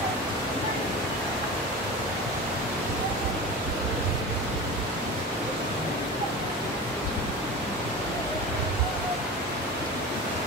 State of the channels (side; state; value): both; normal; correlation 0.30